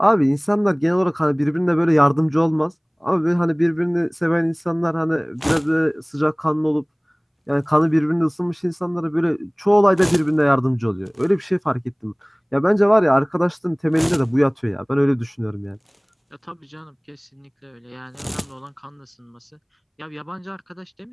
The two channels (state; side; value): identical; both; correlation 1.00